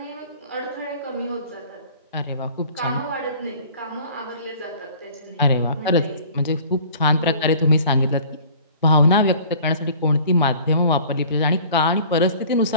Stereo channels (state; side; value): inverted; both; correlation -0.48